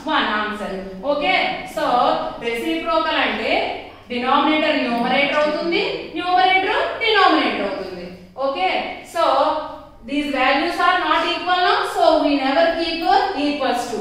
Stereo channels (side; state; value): both; identical; correlation 1.00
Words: 1 answer. Okay. So reciprocal అంటే denominator numerator అవుతుంది, numerator denominator అవుతుంది. Okay. So these values